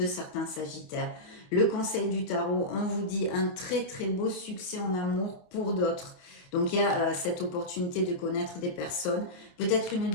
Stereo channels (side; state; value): right; late; 28 ms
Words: certains Sagittaires. Le conseil du tarot, on vous dit un très très beau succès en amour pour d'autres. Donc il y a cette opportunité de connaître des personnes. Peut-être une